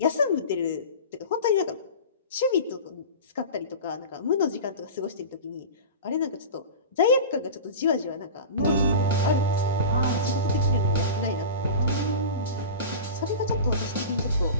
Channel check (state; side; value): inverted; both; correlation -0.31